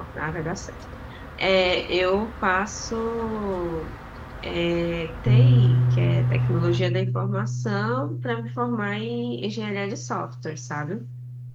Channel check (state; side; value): identical; both; correlation 1.00